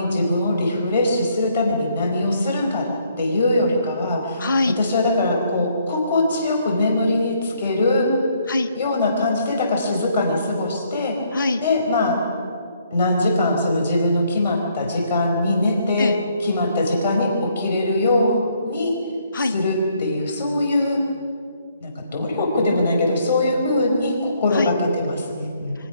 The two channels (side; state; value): both; inverted; correlation -0.69